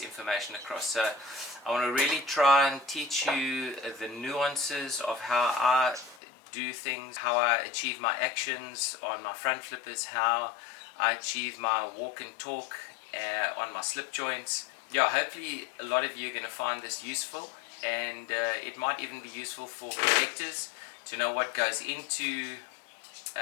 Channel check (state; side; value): drops out; right; at 6.2 s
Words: information across. So I want to really try and teach you the nuances of how I do things, how I achieve my actions on my front flippers, how I achieve my walk and talk on my slip joints. Yeah, hopefully a lot of you are going to find this useful, and it might even be useful for collectors to know what goes into